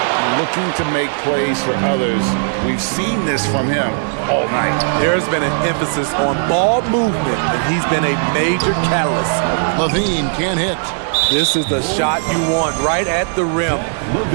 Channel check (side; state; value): left; silent; digital silence